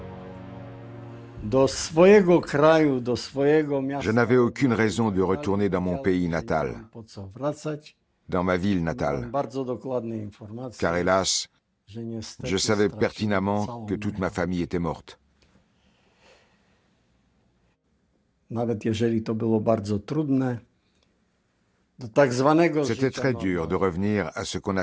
Je n'avais aucune raison de retourner dans mon pays natal, dans ma ville natale, car hélas, je savais pertinemment que toute ma famille était morte. C'était très dur de revenir à ce qu'on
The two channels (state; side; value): identical; both; correlation 1.00